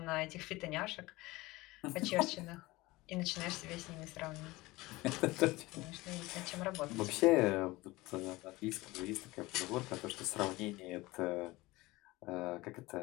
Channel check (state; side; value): quieter; right; 20.5 dB